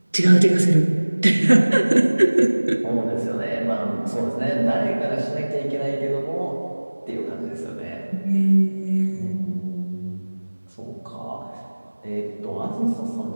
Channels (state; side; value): inverted; both; correlation -1.00